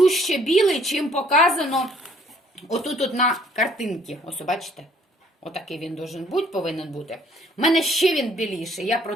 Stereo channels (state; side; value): normal; both; correlation 0.61